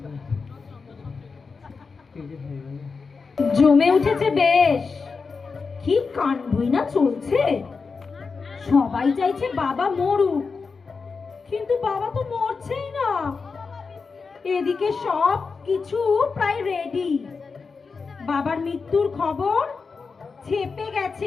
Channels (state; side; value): quieter; right; 4.8 dB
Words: জমে উঠেছে বেশ, কি কাণ্ডই না চলছে। সবাই চাইছে বাবা মরুক, কিন্তু বাবা তো মরছেই না। এদিকে সব কিছু প্রায় রেডি, বাবার মৃত্যুর খবর ছেপে